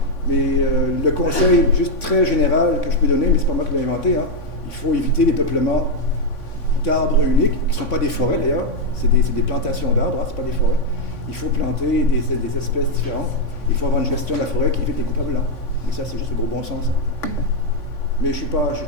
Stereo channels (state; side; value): late; right; 3.5 ms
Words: Mais le conseil juste très général que je peux donner, mais ce n'est pas moi qui l'ai inventé, hein, il faut éviter les peuplements d'arbres uniques, qui ne sont pas des forêts d'ailleurs, c'est des plantations d'arbres, hein, ce n'est pas des forêts. Il faut planter des espèces différentes. Il faut avoir une gestion de la forêt qui évite les coupes à blanc. Mais ça, c'est juste le gros bon sens. Mais je